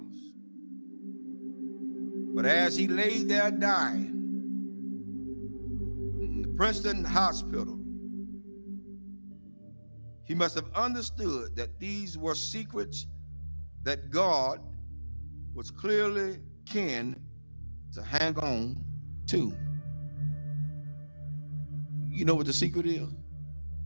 But as he lay there dying in the Princeton hospital, he must have understood that these were secrets that God was clearly keen to hang on to. You know what the secret is?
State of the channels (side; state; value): both; inverted; correlation -1.00